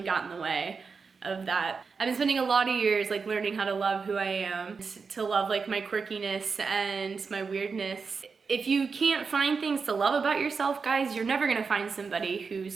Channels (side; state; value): left; quieter; 5.1 dB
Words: got in the way of that. I've been spending a lot of years like learning how to love who I am, to love like my quirkiness and my weirdness. If you can't find things to love about yourself, guys, you're never gonna find somebody